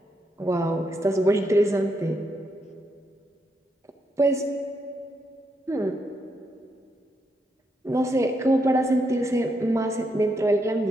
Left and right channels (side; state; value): both; normal; correlation 0.79